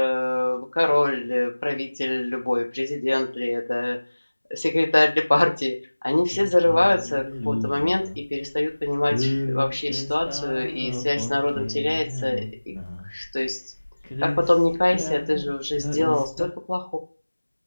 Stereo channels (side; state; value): both; inverted; correlation -1.00